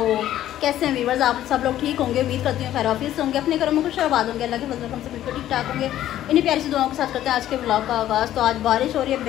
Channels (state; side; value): quieter; right; 12.6 dB